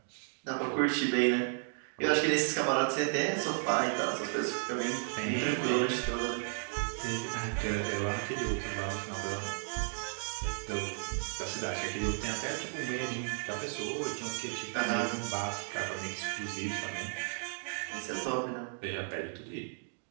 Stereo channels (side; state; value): left; silent; 55 dB below the other